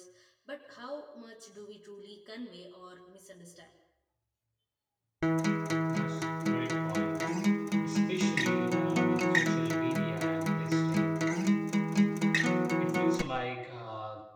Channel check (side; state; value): both; identical; correlation 1.00